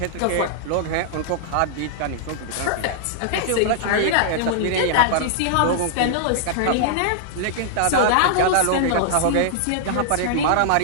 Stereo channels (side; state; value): both; different; correlation -0.01